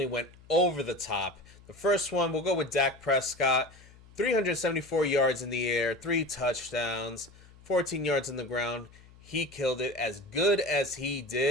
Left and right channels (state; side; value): noise; left; hum, 24 dB below the sound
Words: went over the top. The first one, we'll go with Dak Prescott. 374 yards in the air, 3 touchdowns, 14 yards on the ground. He killed it. As good as he